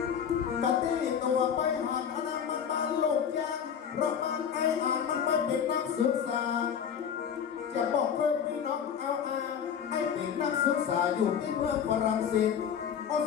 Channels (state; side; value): quieter; right; 8.0 dB